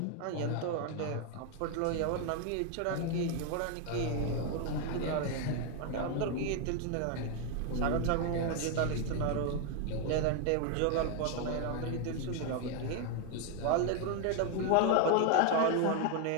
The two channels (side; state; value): both; different; correlation 0.01